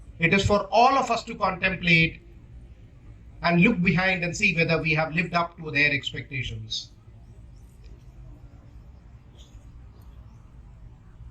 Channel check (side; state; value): both; identical; correlation 1.00